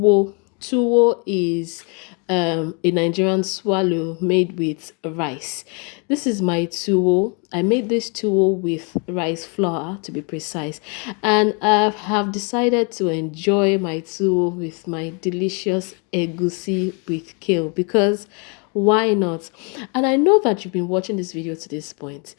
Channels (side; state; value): right; quieter; 35.2 dB